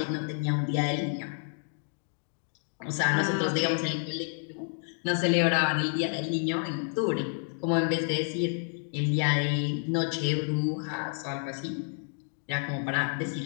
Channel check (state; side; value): silent; right; 58 dB below the other